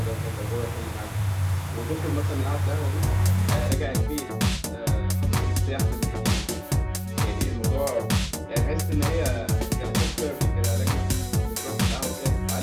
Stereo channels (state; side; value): identical; both; correlation 1.00